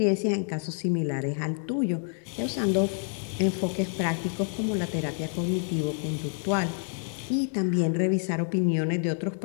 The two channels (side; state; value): right; silent; 59 dB below the other